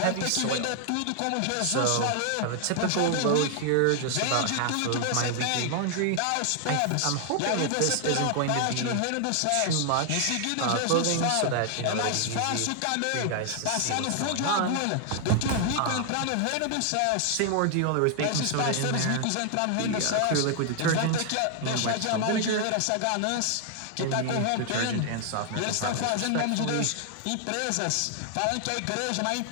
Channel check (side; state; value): both; different; correlation 0.00